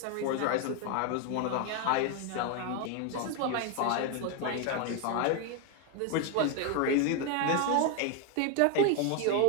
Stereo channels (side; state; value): both; different; correlation 0.01